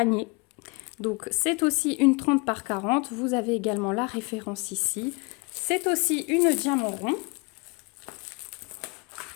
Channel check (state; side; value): quieter; right; 29.8 dB